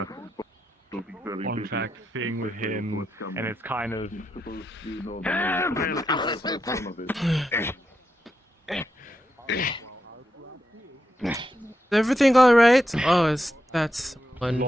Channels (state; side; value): normal; both; correlation 0.85